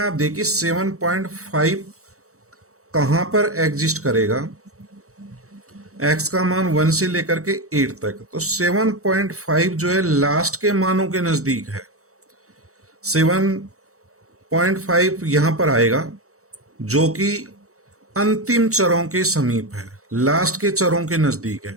देखिए 7.5 कहां पर एग्जिस्ट करेगा। x का मान 1 से लेकर के 8 तक, तो 7.5 जो है लास्ट के मानों के नजदीक है। 7.5 यहां पर आएगा जो कि अंतिम चरों के समीप है, लास्ट के चरों के नजदीक है।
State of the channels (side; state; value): left; late; 0.64 ms